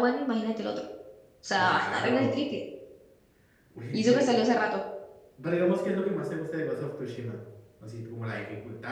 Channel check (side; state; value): both; identical; correlation 1.00